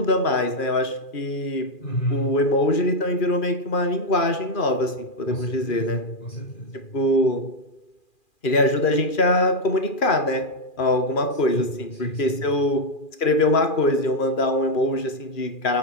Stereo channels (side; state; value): right; late; 2.4 ms